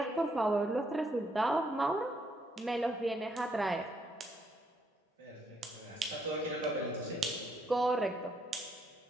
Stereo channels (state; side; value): normal; both; correlation 0.73